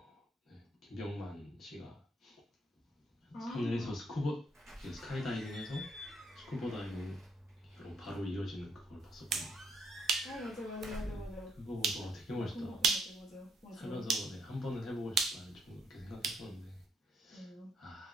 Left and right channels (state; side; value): normal; both; correlation 0.73